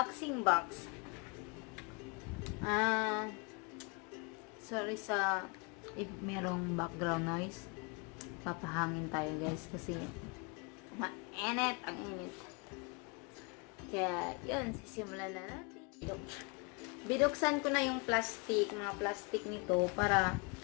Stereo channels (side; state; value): right; quieter; 32.1 dB